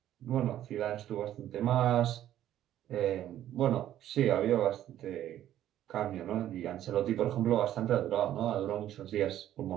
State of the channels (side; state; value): left; quieter; 12.1 dB